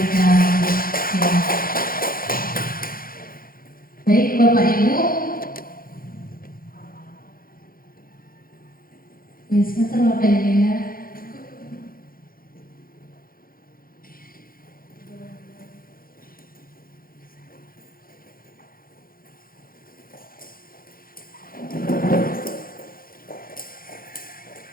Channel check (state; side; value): late; right; 0.42 ms